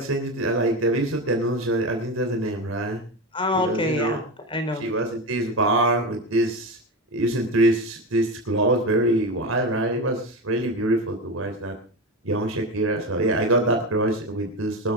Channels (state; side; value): normal; both; correlation 0.20